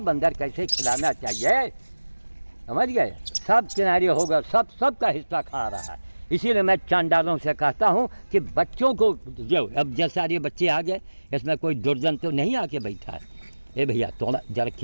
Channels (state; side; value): inverted; both; correlation -1.00